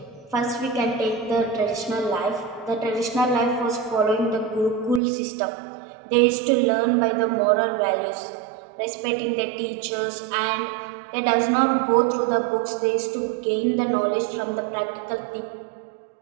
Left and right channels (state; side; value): drops out; left; at 5.0 s